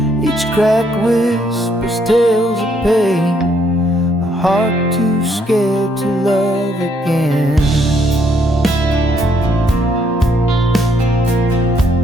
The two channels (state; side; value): normal; both; correlation 0.71